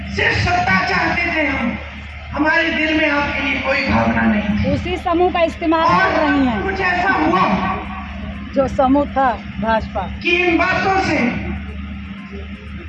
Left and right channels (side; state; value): both; identical; correlation 1.00